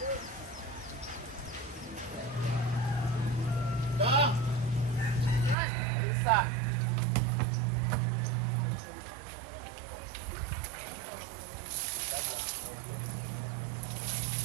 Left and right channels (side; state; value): left; drops out; at 5.6 s